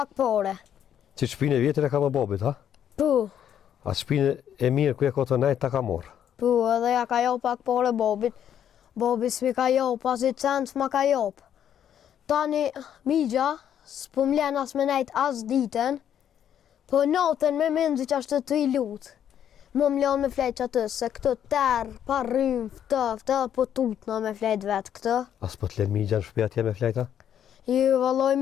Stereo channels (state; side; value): quieter; right; 9.6 dB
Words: pore. Që shpinë e vjetër e ka më bobit, ha? Pu, A shpinë e mirë ku e ka të najtë ta ka morë. edhe ja ka jop pak pore Bobit. Bobi s'mi ka jop, pas i cent s'ma ka jop. Tani migja s'po m'len as me nejt as ditën, po natën me menzi që ashtë të i lutë. Më m'len me flejt që atë, se këtë terë, pa rrymë, ftë, po tutna me flejt vetë këtë. As po të len migja në shpia tje me flejta? Ju valloj